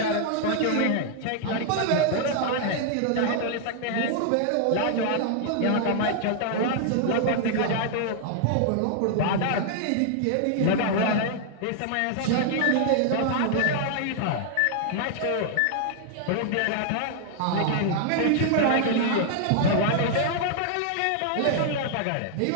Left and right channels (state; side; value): different; both; correlation 0.00